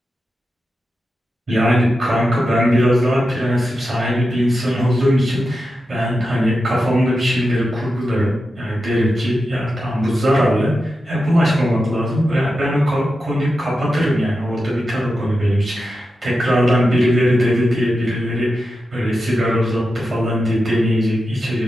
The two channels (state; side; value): normal; both; correlation 0.90